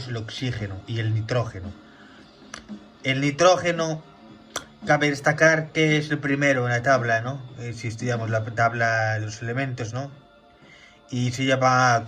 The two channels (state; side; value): identical; both; correlation 1.00